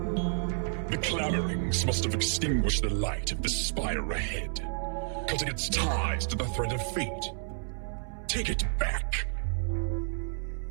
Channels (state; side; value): silent; left; 57 dB below the other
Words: The clamorings must have extinguished the light of the spire ahead, cutting its ties to the thread of fate. Take it back.